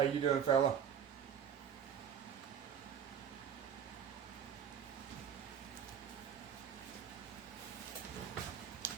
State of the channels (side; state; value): left; quieter; 8.3 dB